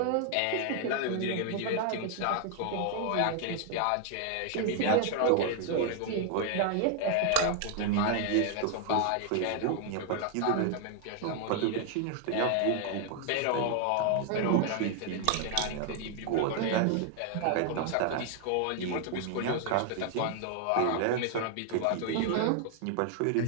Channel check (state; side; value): different; both; correlation 0.00